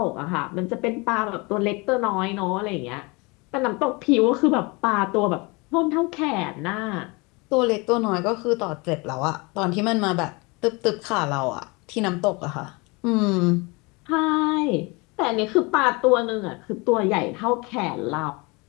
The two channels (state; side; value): quieter; right; 27.2 dB